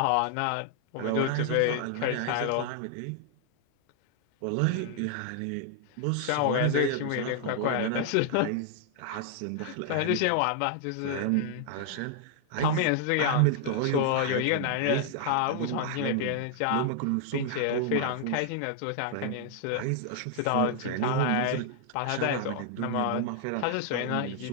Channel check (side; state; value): both; different; correlation 0.00